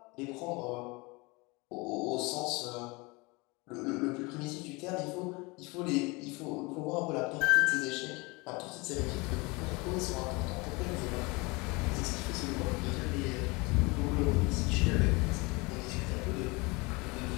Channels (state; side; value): quieter; right; 26.0 dB